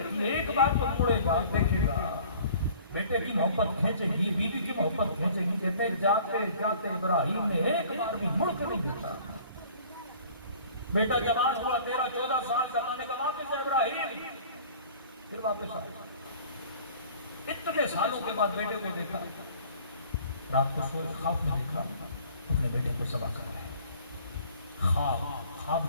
تھی ایک بار تو مڑے گا دیکھے گا، بیٹے کی محبت کھینچے گی، بیوی کی محبت کھینچے گی. کہتے جاتے جاتے ابراہیم نے ایک بار بھی مڑ کے نہیں دیکھا. بیٹا جوان ہوا 13-14 سال کا، اللہ نے کہا واپس ہے ابراہیم، پھر واپس آیا. اتنے سالوں کے بعد بیٹے کو دیکھا، رات کو سوئے خواب میں دیکھا اپنے بیٹے کو ذبح کر رہے ہیں. خواب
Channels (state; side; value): inverted; both; correlation -0.50